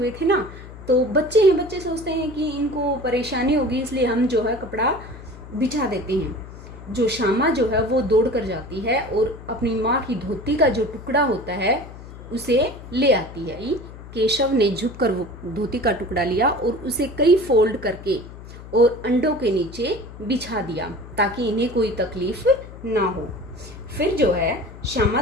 थे ना। तो बच्चे हैं, बच्चे सोचते हैं कि इनको परेशानी होगी इसलिए हम जो है कपड़ा बिछा देते हैं। जो श्यामा जो है वो दौड़ कर जाती है और अपनी माँ की धोती का जो टुकड़ा होता है उसे ले आती है। केशव ने झुककर वो धोती का टुकड़ा लिया और उसे कई फोल्ड करके और अंडों के नीचे बिछा दिया ताकि इन्हें कोई तकलीफ ना हो। फिर जो है श्यामा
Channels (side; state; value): left; noise; hum, 15 dB below the sound